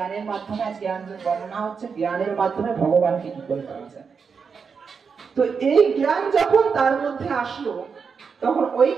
মাধ্যমে আজ জ্ঞান বর্ণনা হচ্ছে, জ্ঞানের মাধ্যমে ভগবানকে কি করে পাওয়া যায়। তো এই জ্ঞান যখন তার মধ্যে আসলো, তখন ওই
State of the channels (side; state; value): left; quieter; 5.8 dB